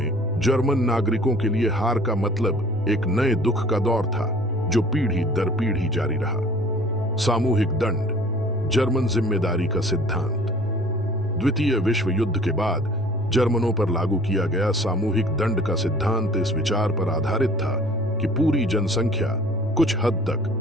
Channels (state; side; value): normal; both; correlation 0.49